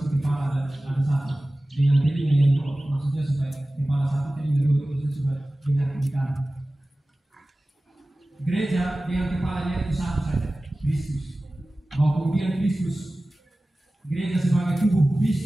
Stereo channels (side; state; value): both; normal; correlation 0.97